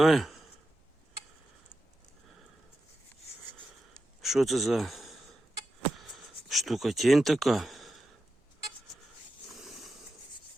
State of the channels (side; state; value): both; normal; correlation 0.89